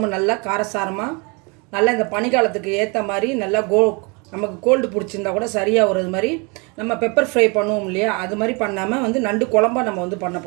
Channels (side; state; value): left; quieter; 30.7 dB